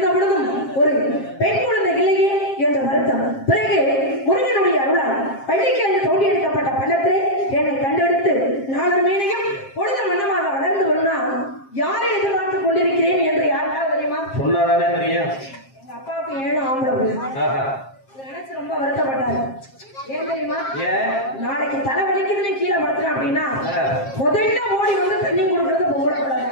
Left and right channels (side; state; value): right; late; 7.5 ms